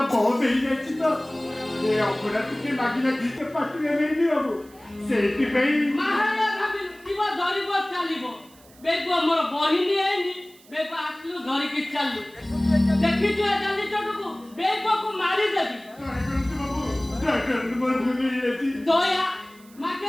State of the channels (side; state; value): right; noise; hiss, 26 dB below the sound